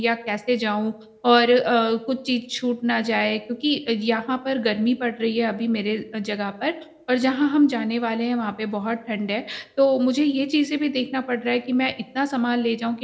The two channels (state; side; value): identical; both; correlation 1.00